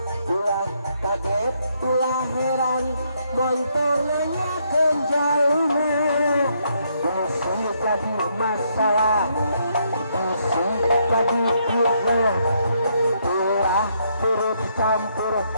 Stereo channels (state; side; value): inverted; both; correlation -0.74